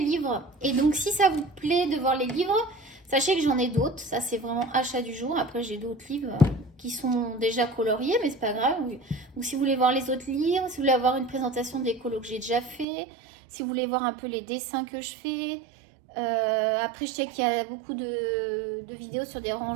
livres. Et donc si ça vous plaît de voir les livres, sachez que j'en ai d'autres. Ça c'est vraiment achat du jour. Après j'ai d'autres livres qui sont déjà coloriés, mais c'est pas grave. Ou si vous voulez voir les autres livres, si vous voulez avoir une présentation des colos que j'ai déjà fait, si vous voulez voir un peu les dessins que je fais. Après je sais qu'il y a beaucoup de vidéos sur des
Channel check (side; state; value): left; drops out; at 12.9 s